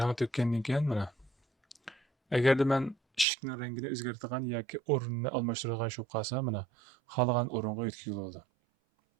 to'kkandan keyin mana. Agarda men eshikning rangini o'zgartirgan yoki o'rnini almashtirgan shu qolsa, mana xohlagan o'ringa o'tkazib bo'ladi.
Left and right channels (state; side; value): drops out; left; at 3.2 s